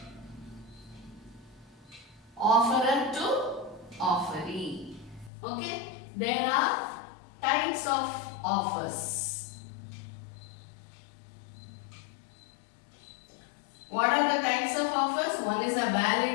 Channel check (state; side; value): drops out; right; at 5.3 s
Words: offerer to offeree. Okay. There are types of offers. What are the types of offers? One is a